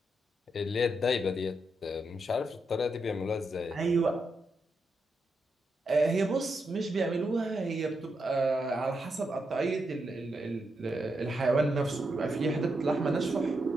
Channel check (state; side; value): normal; both; correlation 0.83